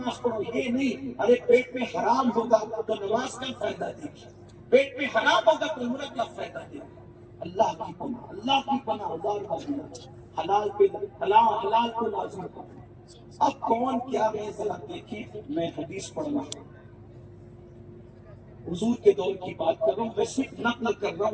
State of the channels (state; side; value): identical; both; correlation 1.00